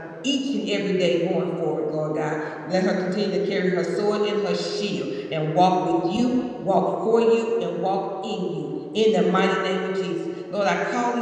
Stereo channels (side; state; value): both; identical; correlation 1.00